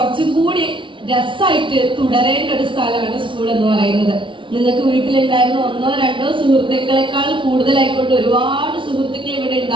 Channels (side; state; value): left; late; 0.24 ms